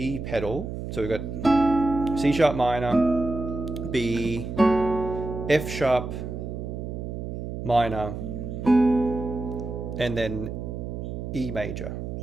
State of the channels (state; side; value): noise; right; hum, 6 dB below the sound